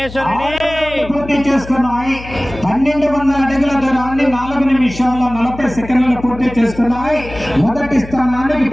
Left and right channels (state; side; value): noise; left; hum, 14 dB below the sound